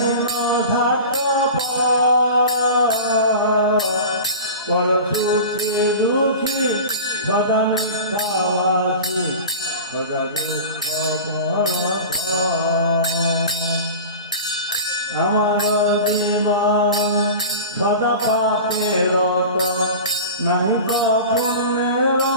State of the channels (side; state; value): both; inverted; correlation -0.34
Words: পর সুখে দুঃখী সদা মিথ্যাবাসী, সদা দুঃখ আমার জীবন সদা পাপের রত, নাহি ক পুণ্যের